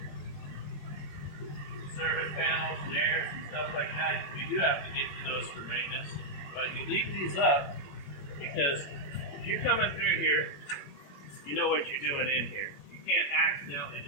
Service panels and airs and stuff like that, you do have to get to those for maintenance. But you leave these up because if you're coming through here, you know what you're doing in here. You can't accidentally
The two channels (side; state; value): right; late; 21 ms